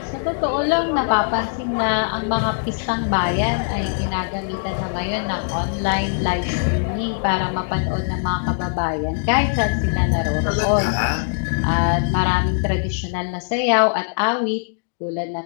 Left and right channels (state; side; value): silent; right; digital silence